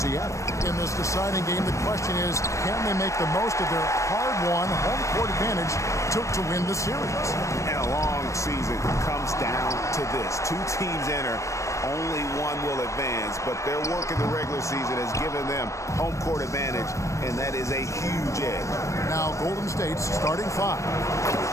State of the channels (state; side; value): late; right; 0.15 ms